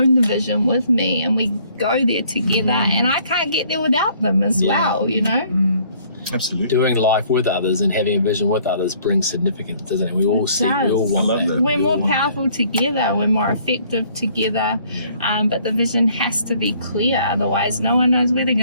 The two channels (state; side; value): inverted; both; correlation -0.61